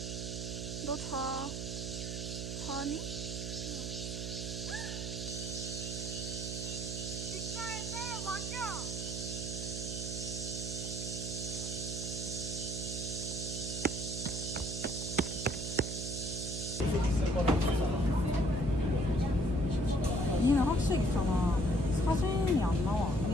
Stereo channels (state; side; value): noise; right; hum, 4 dB below the sound